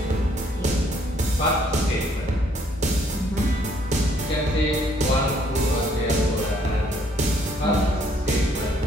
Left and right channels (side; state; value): both; normal; correlation 0.66